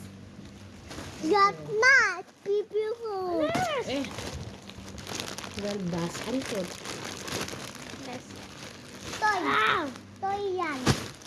Got not. Beautiful. Eh! Galdas. Ano to? Yes. Toy. Wow! Toy yan.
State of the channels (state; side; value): identical; both; correlation 1.00